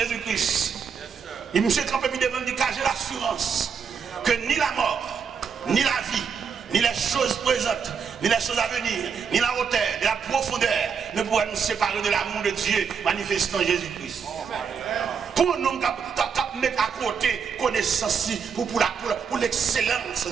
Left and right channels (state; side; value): quieter; left; 6.4 dB